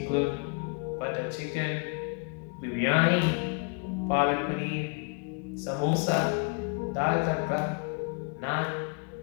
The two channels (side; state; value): right; quieter; 36.3 dB